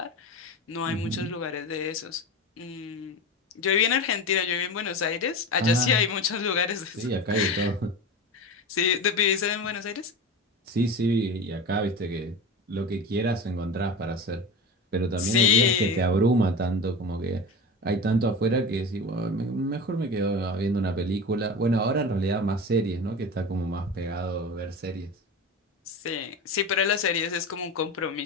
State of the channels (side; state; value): both; normal; correlation 0.27